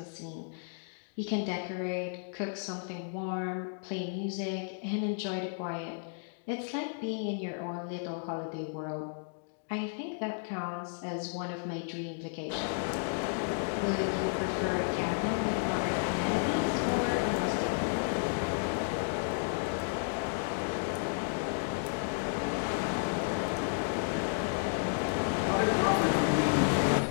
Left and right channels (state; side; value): silent; right; digital silence